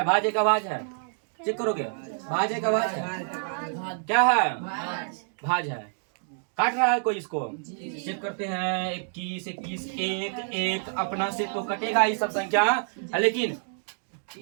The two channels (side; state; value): left; silent; digital silence